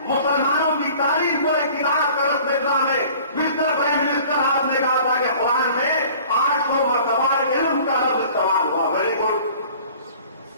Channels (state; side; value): inverted; both; correlation -0.48